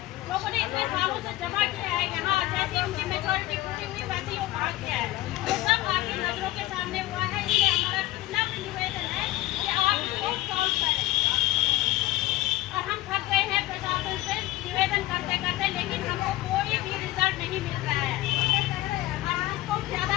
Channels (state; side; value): quieter; right; 17.5 dB